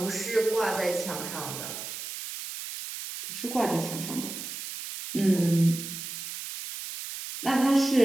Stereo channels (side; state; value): right; noise; hiss, 8 dB below the sound